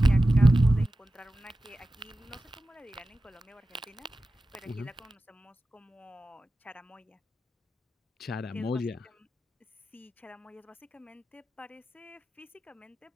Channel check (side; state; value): both; normal; correlation 0.94